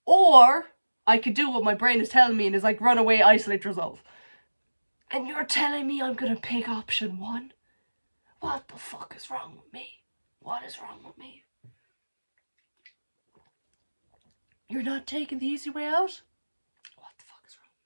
Or I could do what my brain is telling me and is like, run away, isolate yourself. And you're telling me I'm gonna pick option one? What the fuck is wrong with me? What is wrong with me? You're not taking the easy way out? What the fuck is wrong with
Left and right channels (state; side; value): inverted; both; correlation -1.00